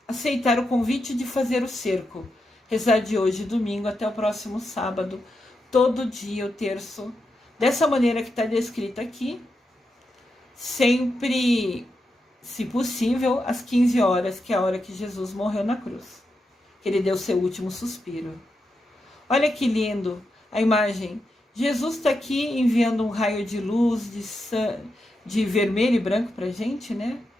aceitar o convite de fazer o cerco. Rezar de hoje, domingo, até o próximo sábado, todo dia o terço, dessa maneira que está descrita aqui, sempre, se possível, às 15 horas, que é a hora que Jesus morreu na cruz, que ele deu seu último suspiro. Olha que lindo a imagem. Jesus está aqui enviando um raio de luz, de vermelho e branco pra gente, né?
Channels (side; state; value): both; normal; correlation 0.86